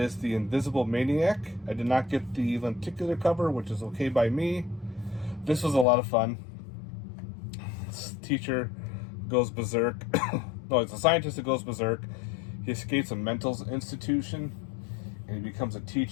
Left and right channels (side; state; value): right; drops out; at 5.9 s